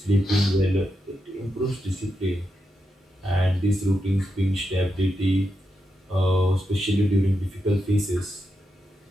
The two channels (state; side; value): normal; both; correlation 0.86